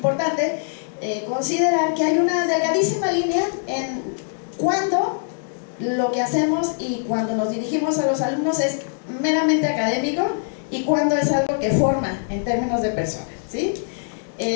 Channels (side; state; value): right; silent; digital silence